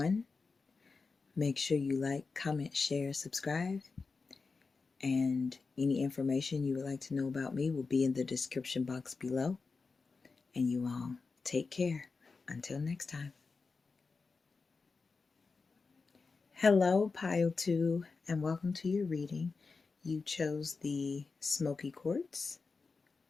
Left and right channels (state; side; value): quieter; right; 4.4 dB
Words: Make sure you like, comment, share, subscribe. And any information you would like to know about me will be in the description box below. And you all take care. Until next time. Hello, Pile 2, and welcome to your reading. You chose the Smoky Quartz.